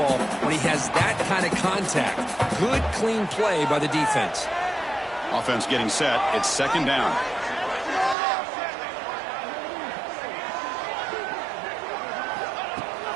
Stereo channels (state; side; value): drops out; left; at 8.2 s